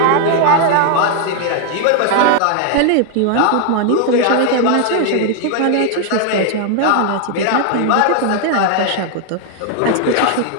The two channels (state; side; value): different; both; correlation 0.00